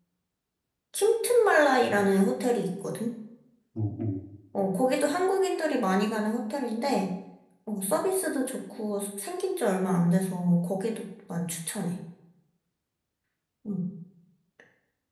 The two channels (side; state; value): both; identical; correlation 1.00